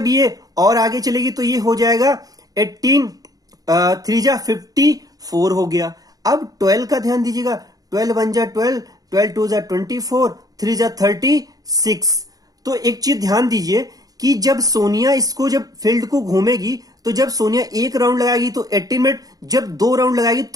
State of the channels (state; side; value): late; left; 0.18 ms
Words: ये और आगे चलेगी तो ये हो जाएगा 18 3 जा 54 हो गया। अब 12 का ध्यान दीजिएगा, 12 1 जा 12, 12 2 जा 24, 3 जा 36। तो एक चीज ध्यान दीजिए कि जब सोनिया इसको जब फील्ड को घूमेगी तो जब सोनिया 1 राउंड लगाएगी तो 18 मिनट, जब 2 राउंड लगाएगी